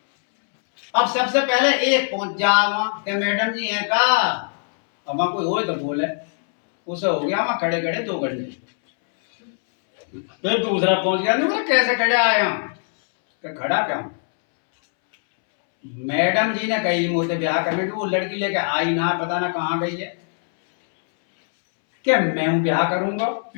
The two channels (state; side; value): silent; right; 65 dB below the other